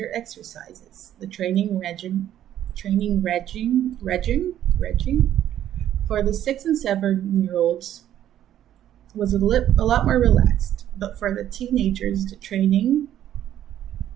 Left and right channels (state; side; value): quieter; left; 11.5 dB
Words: exercises. The training regime for the 6 and 7-year-olds was a lot more relaxed, but for the teenagers, the training